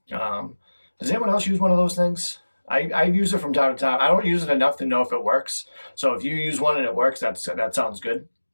Does anyone else use one of those things? I use it from time to time. I don't use it enough to know if it works. So if you use one and it works, that sounds good.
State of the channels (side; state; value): both; inverted; correlation -1.00